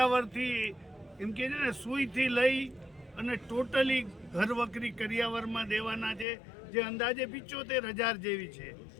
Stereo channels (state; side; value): drops out; right; at 6.2 s